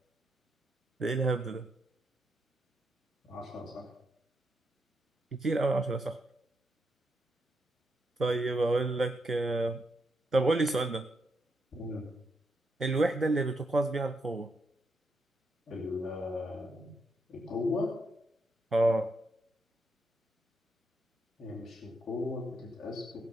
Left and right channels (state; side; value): normal; both; correlation 0.80